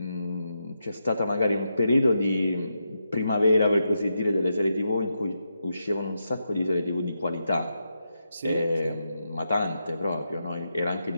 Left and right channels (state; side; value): inverted; both; correlation -0.85